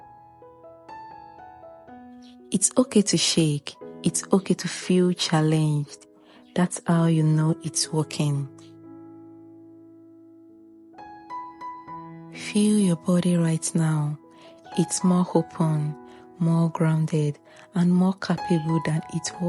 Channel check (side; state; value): both; identical; correlation 1.00